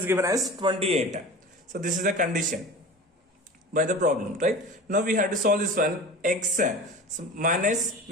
given as 28. So this is the condition by the problem, right? Now we have to solve this one. X, so minus,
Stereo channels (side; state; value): both; normal; correlation 0.35